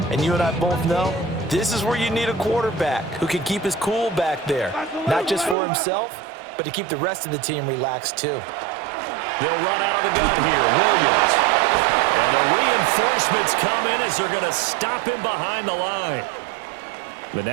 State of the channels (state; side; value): drops out; left; at 5.6 s